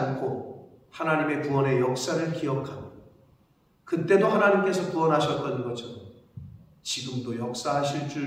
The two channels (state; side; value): identical; both; correlation 1.00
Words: 하나님의 구원의 역사를 기억하며 그때도 하나님께서 구원하셨던 것처럼 지금도 역사하실